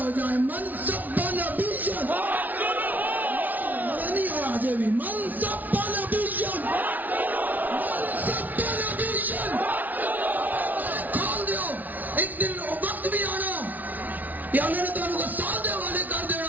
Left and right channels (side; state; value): left; late; 0.079 ms